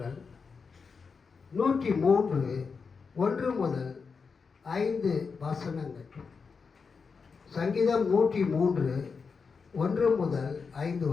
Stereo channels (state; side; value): quieter; right; 5.3 dB